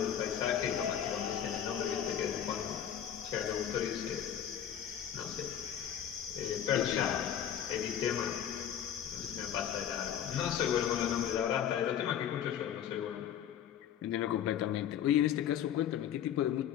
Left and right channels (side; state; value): right; quieter; 9.7 dB